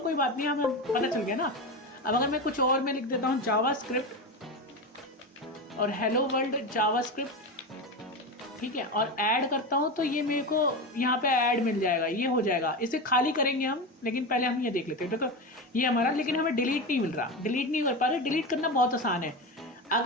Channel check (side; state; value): both; normal; correlation 0.20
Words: बात नहीं, हमें पता चल गया ना। अब अगर मैं कुछ और मैं लिख देता हूँ जावास्क्रिप्ट और हेलो वर्ल्ड जावास्क्रिप्ट, ठीक है, और ऐड करता हूँ तो ये मेरे को यहाँ पे ऐड मिल जाएगा, ये हो जाएगा। इसे खाली करेंगे हम, लेकिन पहले हम ये देख लेते हैं। देखो ये हमारा, लेकिन हमें डिलीट नहीं मिल रहा, डिलीट नहीं कर पा रहे। डिलीट करना बहुत आसान है।